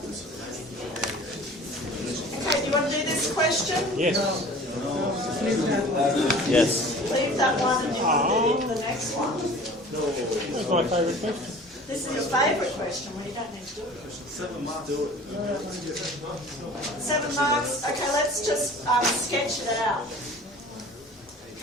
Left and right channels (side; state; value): both; normal; correlation 0.44